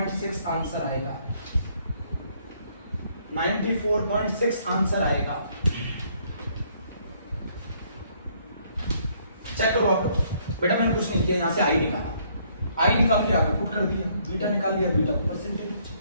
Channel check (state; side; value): inverted; both; correlation -0.66